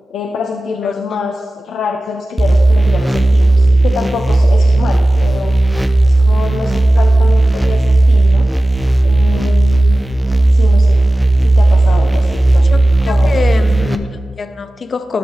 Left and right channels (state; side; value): normal; both; correlation 0.96